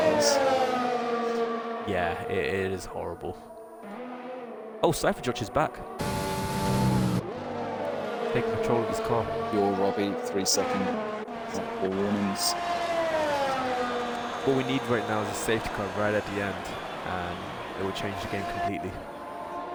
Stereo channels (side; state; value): both; identical; correlation 1.00